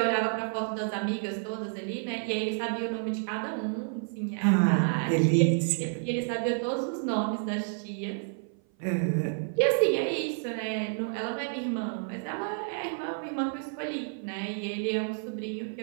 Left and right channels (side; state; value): left; silent; 56 dB below the other